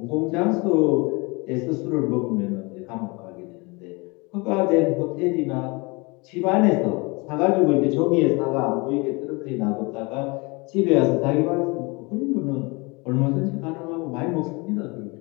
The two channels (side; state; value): right; quieter; 27.1 dB